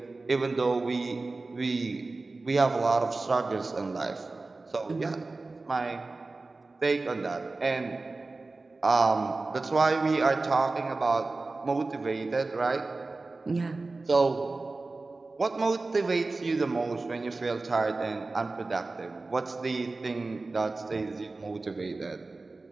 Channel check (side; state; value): left; quieter; 3.5 dB